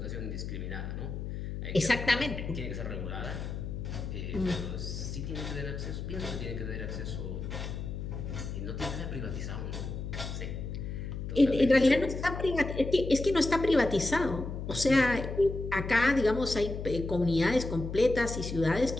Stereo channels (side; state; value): left; noise; hum, 6 dB below the sound